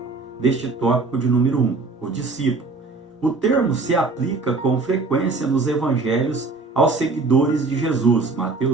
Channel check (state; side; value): quieter; left; 3.7 dB